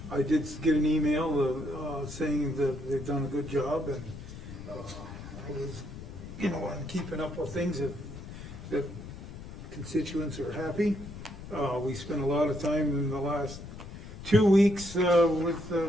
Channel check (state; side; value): noise; left; rumble, 12 dB below the sound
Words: I did get an email, saying that they've done a good job, and, I was, I'm keeping up with things that constituents are happy. We spent a lot of time in the last 2 weeks, with,